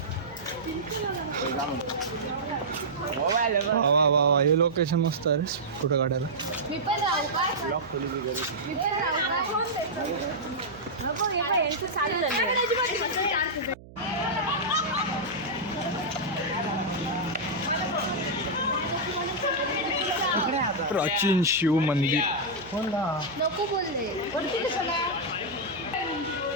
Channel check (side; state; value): right; noise; hum, 19 dB below the sound